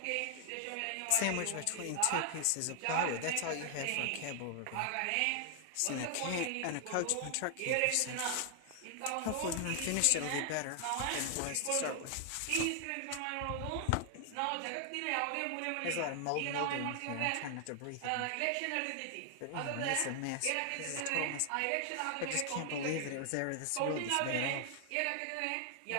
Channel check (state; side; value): different; both; correlation 0.00